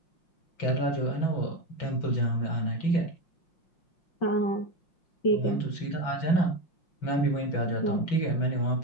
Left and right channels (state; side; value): late; right; 6.0 ms